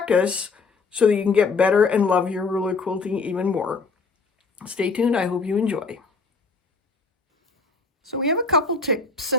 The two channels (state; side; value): quieter; right; 4.4 dB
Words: so that you can get better and love your ruler quilting even more. Stay tuned. I hope you enjoy. So we have a couple tips